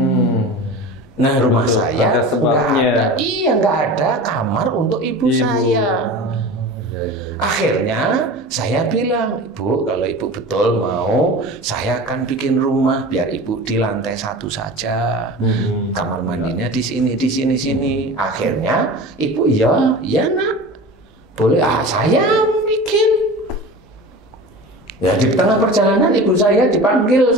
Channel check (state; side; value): normal; both; correlation 0.34